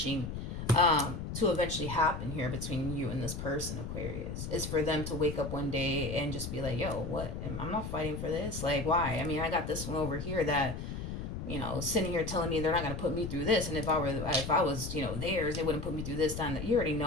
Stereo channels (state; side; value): noise; left; rumble, 6 dB below the sound